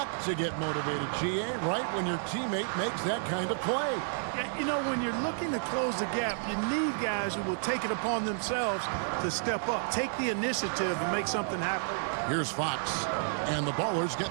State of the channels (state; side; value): silent; left; digital silence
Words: to get motivated, GA, right when your teammate makes that kind of play. Yeah, you know, when you're looking to close the gap, you need guys who will take it upon themselves to step up, take the initiative and make something happen. Here's Fox, and the Ballers